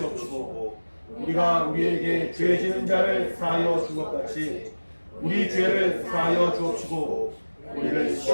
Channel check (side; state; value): both; inverted; correlation -1.00